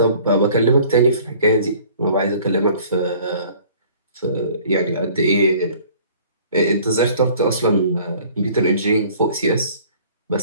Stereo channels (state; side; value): inverted; both; correlation -0.52